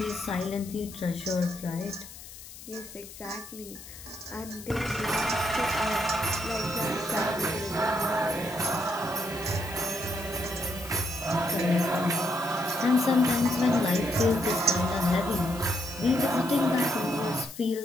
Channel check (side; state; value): left; noise; hiss, 15 dB below the sound